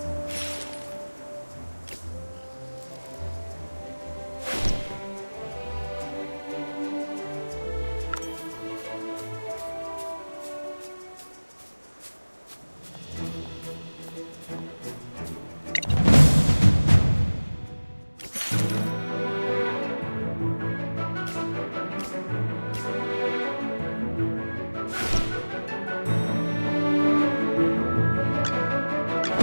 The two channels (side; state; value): both; inverted; correlation -1.00